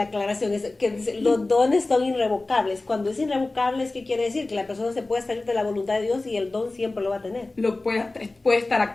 aclaración es que los dones son irrevocables. Cuando es irrevocable, ¿qué quiere decir? Que la persona se puede salir de la voluntad de Dios y el don siempre lo va a tener. Puede estar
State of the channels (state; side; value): quieter; right; 3.1 dB